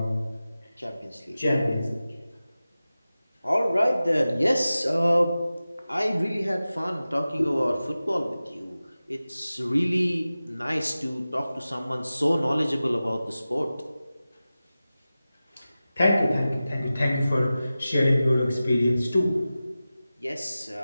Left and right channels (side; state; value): both; inverted; correlation -0.95